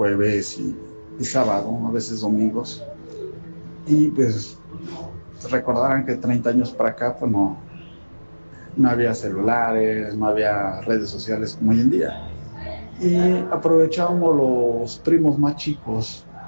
y sábado, a veces domingos. Y pues recordarán que 30 años para acá, pues no había celulares, no había redes sociales como hoy en día. Y aprovechábamos los primos más chicos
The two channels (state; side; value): inverted; both; correlation -1.00